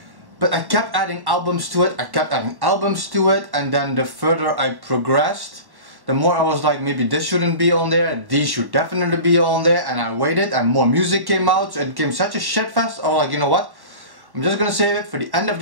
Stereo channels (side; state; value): left; late; 1.1 ms